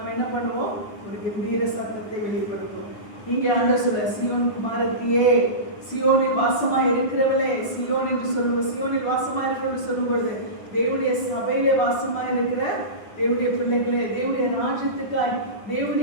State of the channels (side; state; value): right; late; 9.7 ms